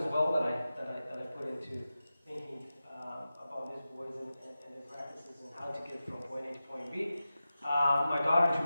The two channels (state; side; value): inverted; both; correlation -0.93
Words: well that I put into thinking about these boys and their practices and how to get from point A to point B. My daughter